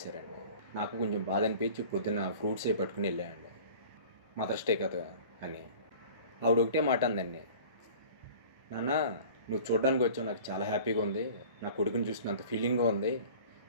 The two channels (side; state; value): both; inverted; correlation -0.43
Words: నాకు కొంచెం బాధ అనిపించి పొద్దున్న ఫ్రూట్స్ అవి పట్టుకుని వెళ్ళానండి. మదర్స్ డే కదా అని. ఆవిడ ఒకటే మాట అందండి. నాన్న, నువ్వు చూడడానికి వచ్చావు, నాకు చాలా హ్యాపీగా ఉంది. నా కొడుకుని చూసినంత ఫీలింగ్గా ఉంది.